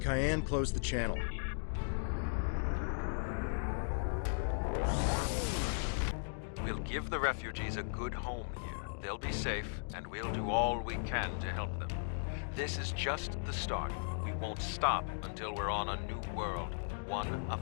Cayenne closed the channel. We'll give the refugees a good home here. They'll be safe, and we'll do all we can to help them. This is just the start. We won't stop until we're on a new world, one of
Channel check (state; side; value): silent; right; digital silence